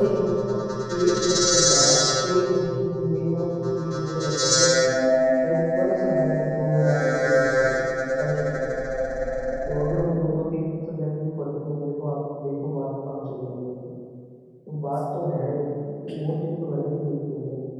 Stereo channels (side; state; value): both; identical; correlation 1.00